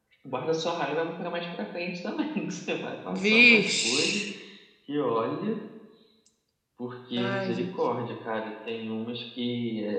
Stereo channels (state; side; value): identical; both; correlation 1.00